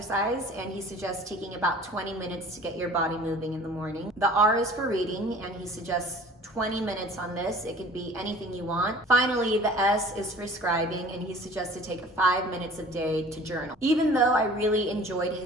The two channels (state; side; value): normal; both; correlation 0.47